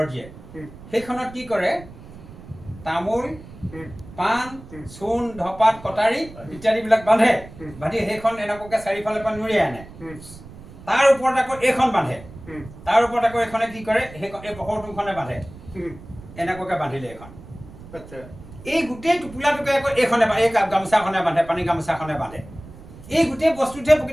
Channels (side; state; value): right; noise; rumble, 17 dB below the sound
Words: দিয়ে সেইখনত কি কৰে তামোল পাণ চূণ ধপাত কটাৰী ইত্যাদিবিলাক বান্ধে বান্ধি সেইখন এনেকুৱাকে চাৰিওফালৰ পৰা নুৰিয়াই আনে তাৰ ওপৰত আকৌ এইখন বান্ধে তাৰ ওপৰত আকৌ এইখনে কি কৰে এই পখৰটোখনে বান্ধে এনেকুৱাকে বান্ধিলে এইখন এই গোটেই টোপোলাটোকে আকৌ এইখনে এই গামোচাখনে বান্ধে পানী গামোচাখনে বান্ধে এই গোটেই বস্তুটোৱে